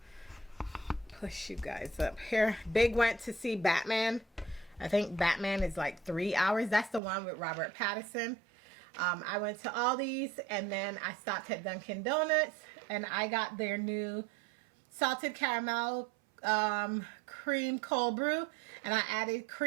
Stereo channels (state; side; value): drops out; left; at 7.0 s